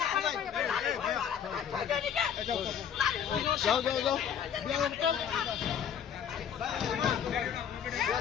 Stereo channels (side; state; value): right; quieter; 8.4 dB